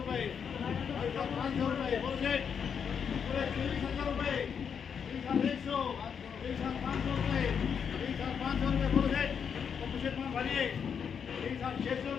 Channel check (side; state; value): right; quieter; 7.1 dB